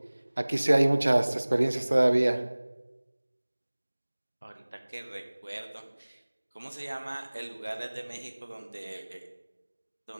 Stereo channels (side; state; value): both; inverted; correlation -1.00